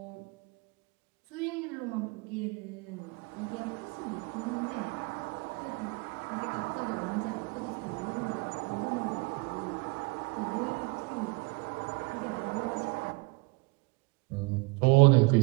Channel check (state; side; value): quieter; left; 28.3 dB